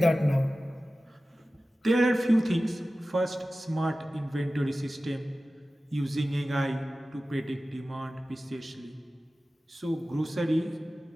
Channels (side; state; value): both; normal; correlation 0.96